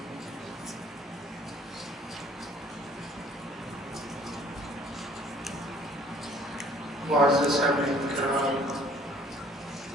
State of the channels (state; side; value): normal; both; correlation 0.56